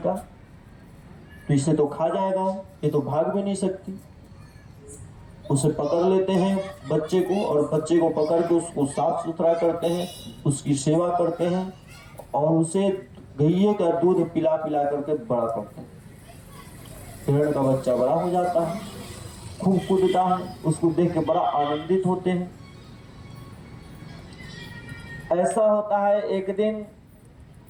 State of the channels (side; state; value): both; identical; correlation 1.00